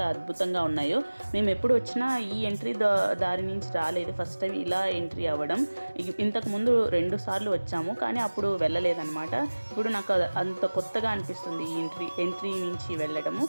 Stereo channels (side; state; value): both; inverted; correlation -1.00